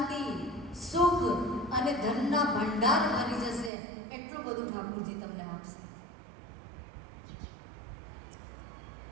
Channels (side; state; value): left; drops out; at 3.7 s